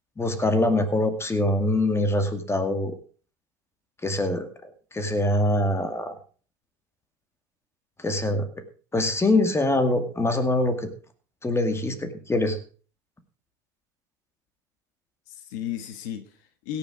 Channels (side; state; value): both; normal; correlation 0.53